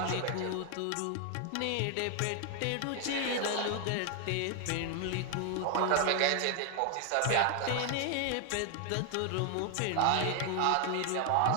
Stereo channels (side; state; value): both; different; correlation 0.00